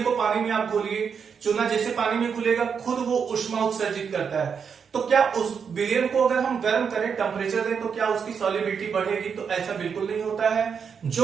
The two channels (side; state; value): left; quieter; 6.5 dB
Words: को पानी में आप घोलिए, चूना जैसे पानी में घुलेगा खुद वो ऊष्मा उत्सर्जित करता है, तो क्या उस विलयन को अगर हम गर्म करें, टेम्परेचर दें, तो क्या उसकी सॉल्युबिलिटी बढ़ेगी? तो ऐसा बिल्कुल नहीं होता है।